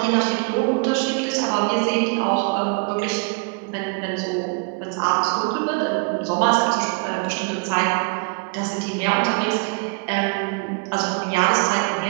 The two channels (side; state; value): left; quieter; 35.3 dB